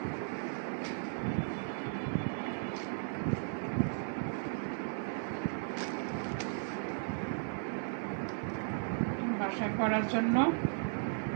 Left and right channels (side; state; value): left; silent; 54 dB below the other